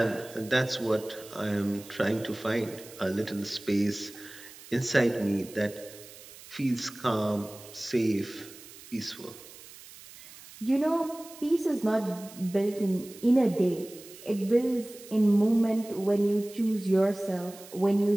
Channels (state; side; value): noise; right; hiss, 18 dB below the sound